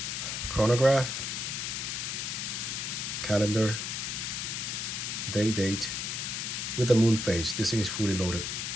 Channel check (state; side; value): noise; left; hiss, 3 dB below the sound